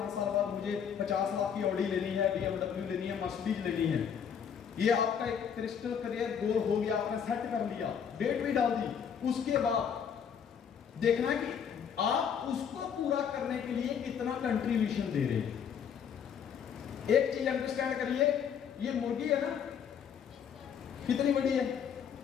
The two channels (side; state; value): right; quieter; 7.7 dB